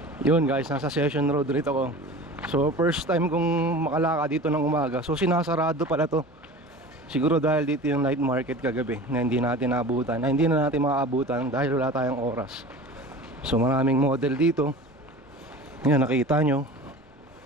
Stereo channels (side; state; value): both; normal; correlation 0.37